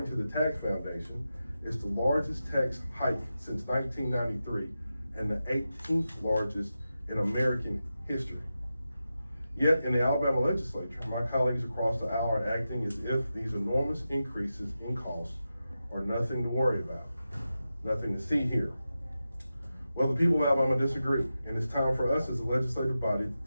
to the Tax Foundation, it's the largest tax hike since 1993 and the 18th largest in American history. Yet in the Alabama legislature, my colleagues across the aisle are acting as if these enormous increases in costs are nothing to worry about, nothing to see here. Well, the people of Alabama disagree, and it's time for us as a legislative body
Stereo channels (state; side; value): inverted; both; correlation -0.91